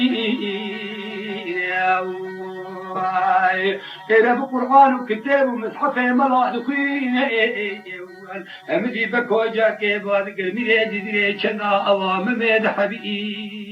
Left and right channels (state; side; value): identical; both; correlation 1.00